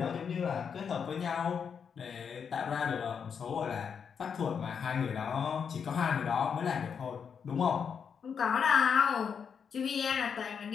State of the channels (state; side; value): quieter; right; 6.8 dB